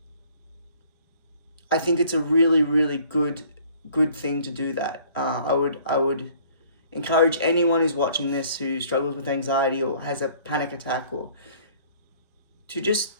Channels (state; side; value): inverted; both; correlation -0.56